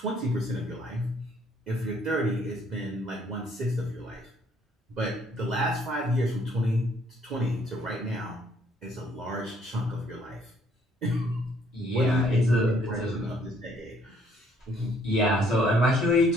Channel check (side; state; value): both; normal; correlation 0.64